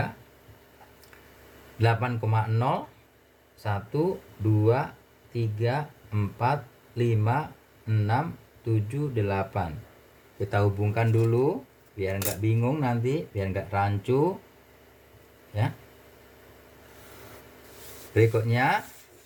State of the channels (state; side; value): identical; both; correlation 1.00